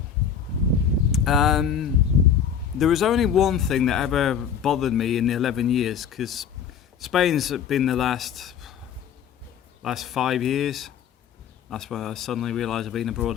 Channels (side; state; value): right; quieter; 7.8 dB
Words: there was only one thing that ever bothered me in the 11 years, because Spain's been the last 5 years. That's when I suddenly realised I've been